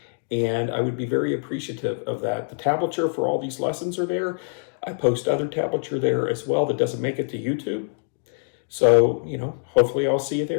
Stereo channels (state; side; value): silent; right; digital silence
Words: And I would be very appreciative of that. The tablature for all these lessons are there. I post other tablature there as well that doesn't make it to YouTube. So, hopefully I'll see you